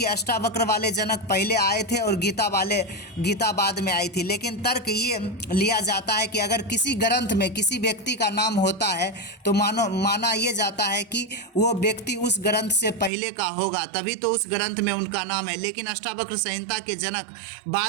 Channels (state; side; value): drops out; left; at 13.1 s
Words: अष्टावक्र वाले जनक पहले आए थे और गीता बाद में आई थी। लेकिन तर्क ये लिया जाता है कि अगर किसी ग्रंथ में किसी व्यक्ति का नाम होता है तो माना ये जाता है कि वो व्यक्ति उस ग्रंथ से पहले का होगा, तभी तो उस ग्रंथ में उनका नाम है। लेकिन अष्टावक्र संहिता के जनक